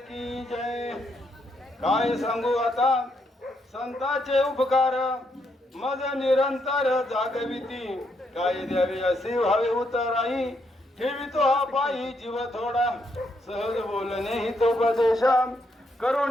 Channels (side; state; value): both; normal; correlation 0.77